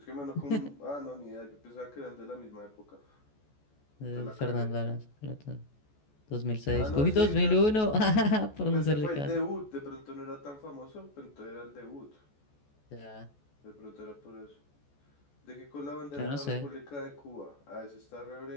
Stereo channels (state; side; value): late; right; 14 ms